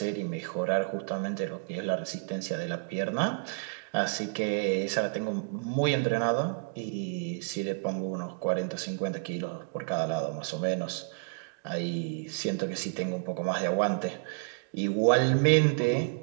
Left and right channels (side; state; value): left; silent; digital silence